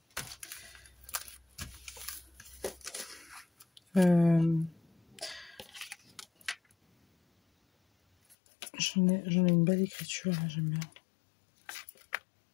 J'en ai une belle écriture, là, j'aime bien.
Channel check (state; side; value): drops out; right; at 8.3 s